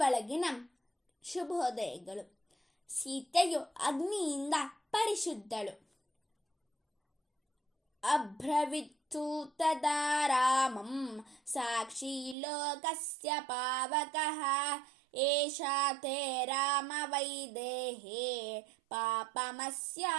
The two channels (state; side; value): drops out; left; at 12.4 s